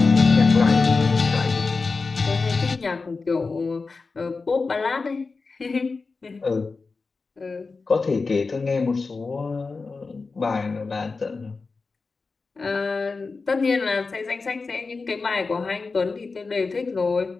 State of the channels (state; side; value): quieter; right; 4.2 dB